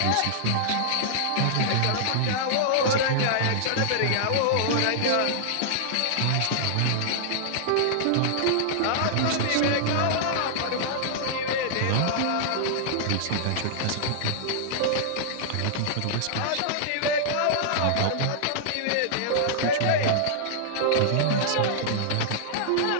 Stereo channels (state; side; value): different; both; correlation -0.01